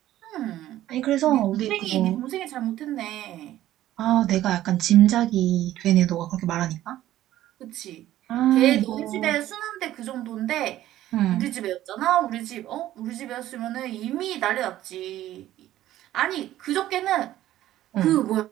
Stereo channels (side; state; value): left; quieter; 13.8 dB